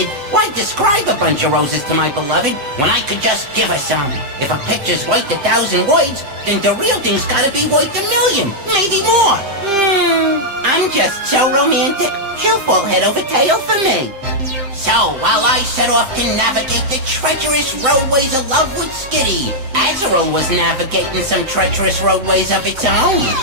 why describe a bunch of roses to my beloved when I could just give her some? If a picture's worth 1,000 words, then the real thing's gotta be worth 1,000,000, maybe more. I'm just so romantic. She'll fall head over tail for me. So, while I set off to navigate the treacherous roadways of love with Skitty, Azurill was navigating some treacherous roadways of its own.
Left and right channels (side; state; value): left; late; 7.5 ms